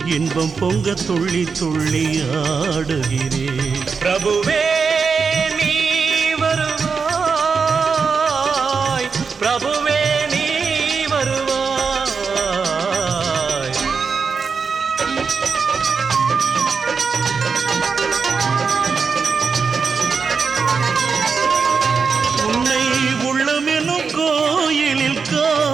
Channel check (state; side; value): quieter; left; 5.4 dB